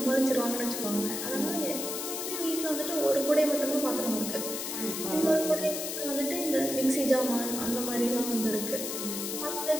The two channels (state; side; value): noise; left; hiss, 4 dB below the sound